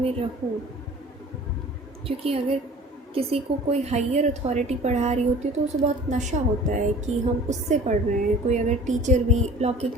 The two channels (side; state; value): both; normal; correlation 0.45